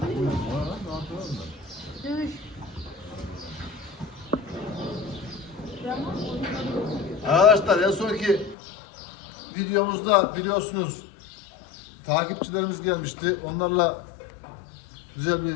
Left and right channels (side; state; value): right; drops out; at 8.6 s